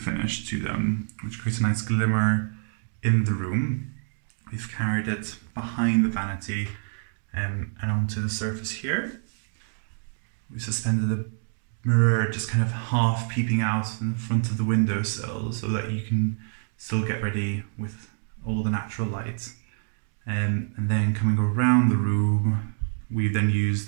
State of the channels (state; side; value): silent; left; digital silence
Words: to them, which creates a nice glimmer in the room. We've carried it behind the vanity and onto the surface here. We suspended a mirror just kind of half peeping out in front of the windowsill so that you can still get ready with all the natural light. And then coming around the room, we've then used